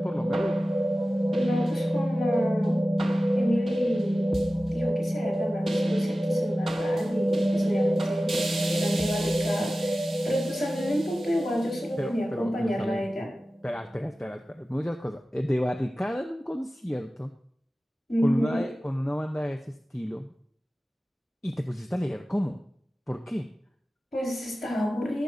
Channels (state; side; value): normal; both; correlation 0.95